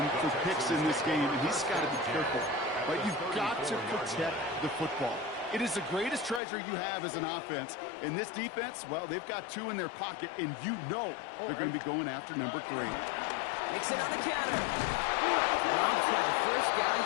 for picks in this game, and he's got to be careful. But you've got to protect the football. It is the greatest treasure you have as an offense. In this defense, well, they've got 2 in their pocket, and you know they're going to be going after number 3. Mixon on the counter. Romped by the first guy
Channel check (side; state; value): right; drops out; at 6.4 s